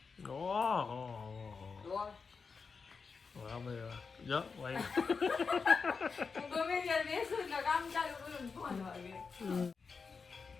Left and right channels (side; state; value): right; quieter; 5.1 dB